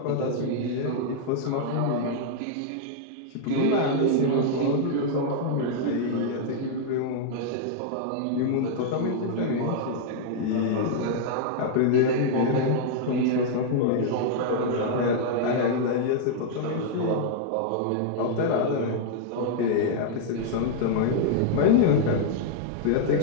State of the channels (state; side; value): different; both; correlation -0.01